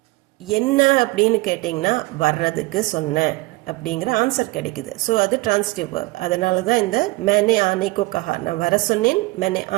என்ன அப்படின்னு கேட்டிங்கன்னா வர்றதுக்கு சொன்னேன் அப்படிங்கிற ஆன்சர் கிடைக்குது. ஸோ அது டிரான்சிட்டிவ் வேர்ப். அதனால தான் இந்த மேனே ஆனேக்கோ கஹா, நான் வர சொன்னேன், மேனே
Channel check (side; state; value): left; quieter; 22.3 dB